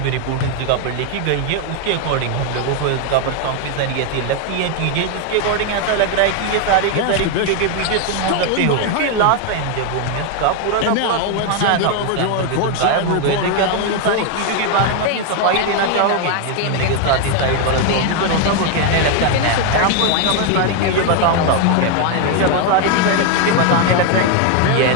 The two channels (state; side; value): different; both; correlation 0.01